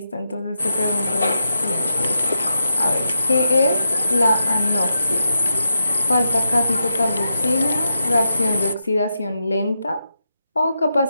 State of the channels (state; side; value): inverted; both; correlation -0.85